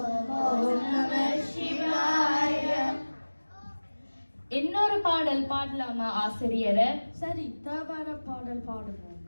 நம சிவாய. இன்னொரு பாடல் பாடலாமா ஆசிரியரை? சரி, தேவார பாடல் பாடுவோம்.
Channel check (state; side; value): inverted; both; correlation -1.00